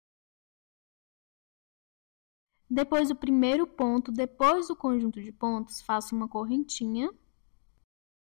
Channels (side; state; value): right; silent; digital silence